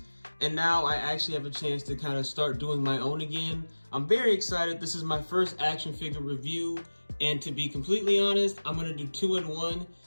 and now I actually have a chance to kind of start doing my own again. I'm very excited. This is my first action figure review, and to be completely honest, I'm going to do 2 in 1.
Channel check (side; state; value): both; inverted; correlation -1.00